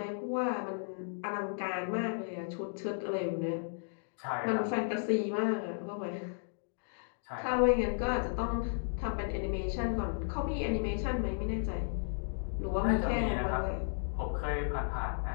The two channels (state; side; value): silent; right; digital silence